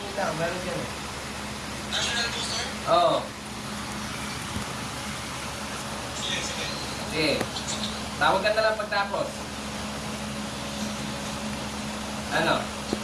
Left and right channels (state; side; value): identical; both; correlation 1.00